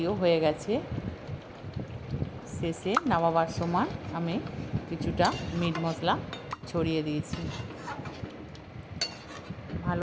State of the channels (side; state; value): both; identical; correlation 1.00